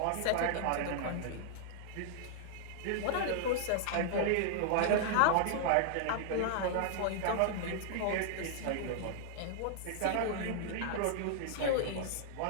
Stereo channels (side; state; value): both; different; correlation -0.01